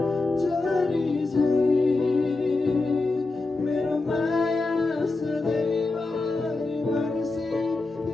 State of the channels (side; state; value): right; quieter; 3.4 dB